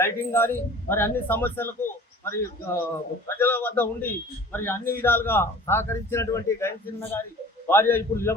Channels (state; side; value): normal; both; correlation 0.45